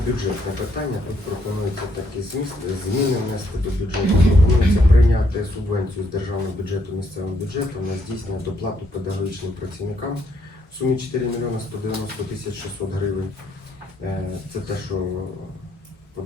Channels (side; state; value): both; normal; correlation 0.72